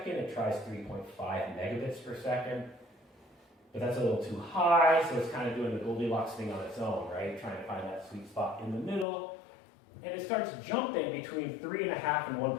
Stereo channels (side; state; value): right; drops out; at 9.1 s